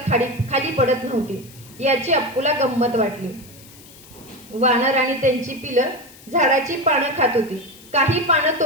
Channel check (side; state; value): left; noise; hiss, 22 dB below the sound